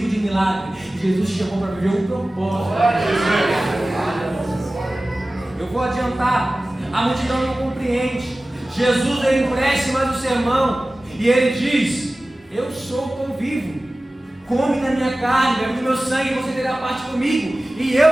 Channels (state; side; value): normal; both; correlation 0.97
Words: de milagre, Jesus te chamou para viver um propósito. Eu vou adiantar, a multidão não compreende. Jesus ele empresta mais o sermão e ele diz: eu sou o pão vivo. Come da minha carne, bebe do meu sangue, e você terá parte comigo, e